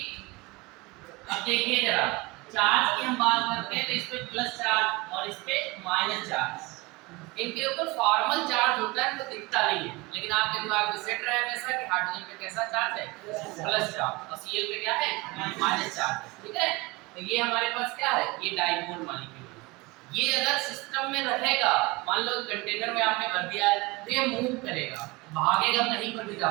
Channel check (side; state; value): left; quieter; 24.0 dB